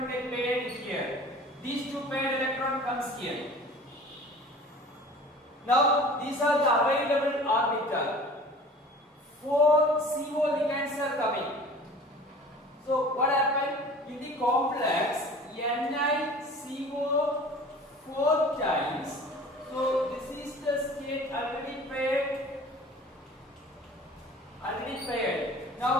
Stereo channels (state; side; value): normal; both; correlation 0.43